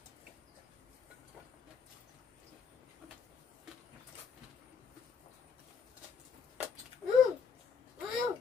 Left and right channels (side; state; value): right; quieter; 6.1 dB